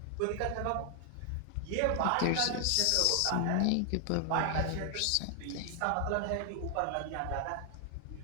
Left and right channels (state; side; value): different; both; correlation 0.00